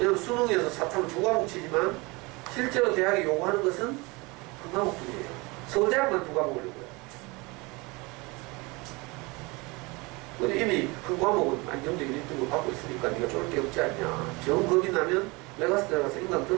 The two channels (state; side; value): quieter; left; 25.6 dB